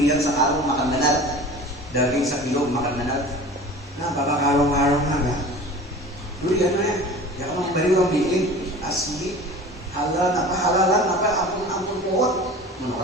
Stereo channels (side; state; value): both; normal; correlation 0.39